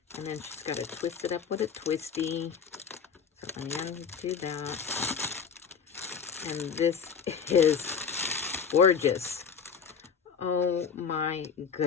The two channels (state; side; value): quieter; right; 6.5 dB